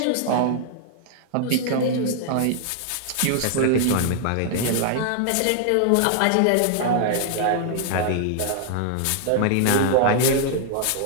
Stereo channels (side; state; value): both; different; correlation 0.00